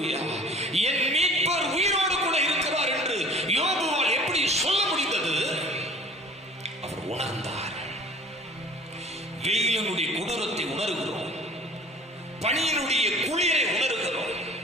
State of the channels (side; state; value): both; normal; correlation 0.46